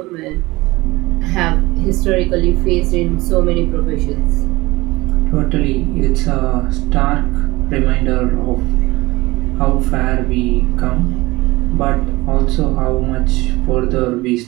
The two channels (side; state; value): left; quieter; 20.8 dB